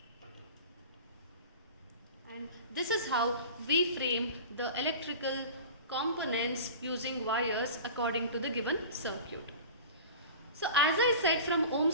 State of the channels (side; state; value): both; inverted; correlation -0.37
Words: And this is how we frame the electrical components using wires according to the given circuit. So as I said from